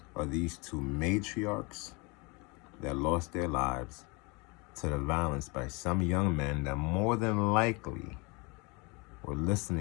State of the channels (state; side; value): quieter; right; 28.6 dB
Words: of these 2 matriarchs that lost their lives to the violence by some young men that more than likely were